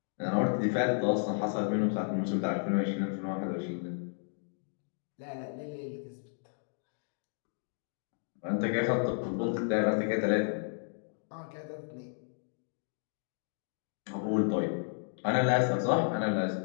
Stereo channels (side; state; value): right; silent; digital silence